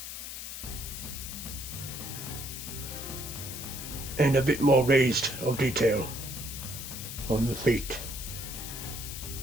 And a bit more raised of detail on the feet.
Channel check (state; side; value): noise; left; hiss, 8 dB below the sound